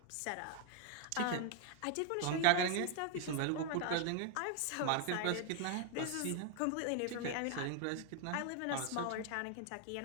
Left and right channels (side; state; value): both; different; correlation 0.00